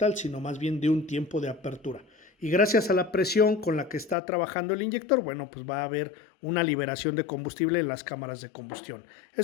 sino más bien de un tiempo de apertura. Y gracias a la presión con la que está trabajando el inyector, bueno, pues va a haber una liberación de combustible en las cámaras de combustión.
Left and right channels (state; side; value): drops out; right; at 4.2 s